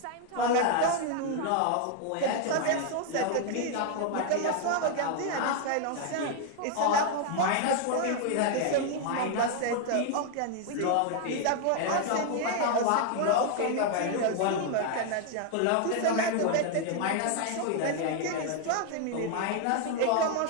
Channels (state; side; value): different; both; correlation 0.00